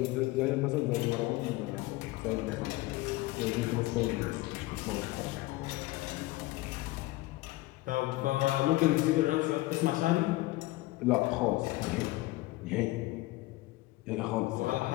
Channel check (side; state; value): right; quieter; 19.0 dB